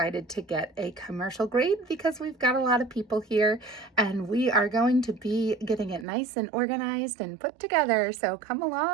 to get a commercial grade because we've got a lot of people here, and we are going to be getting it nice and organized and put together. So come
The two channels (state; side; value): drops out; left; at 6.1 s